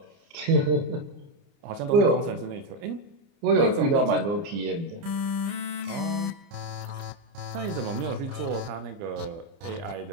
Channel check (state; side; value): late; left; 30 ms